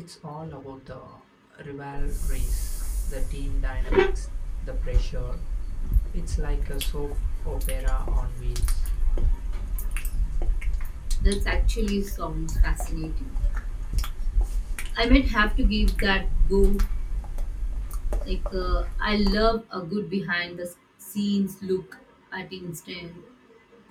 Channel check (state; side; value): identical; both; correlation 1.00